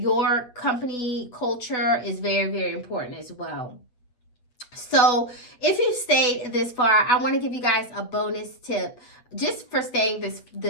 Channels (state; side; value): late; right; 8.0 ms